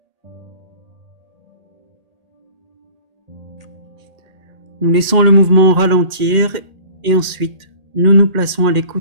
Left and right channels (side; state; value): left; late; 1.8 ms